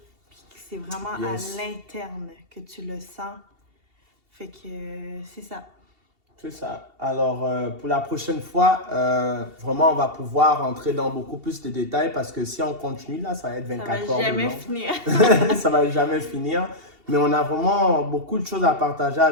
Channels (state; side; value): late; left; 2.7 ms